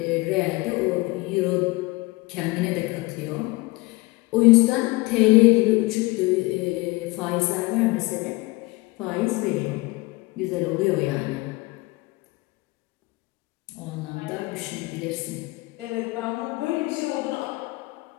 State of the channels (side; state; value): right; quieter; 22.6 dB